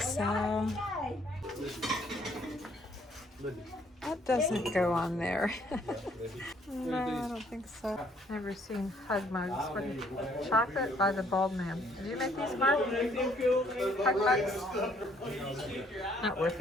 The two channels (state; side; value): normal; both; correlation 0.64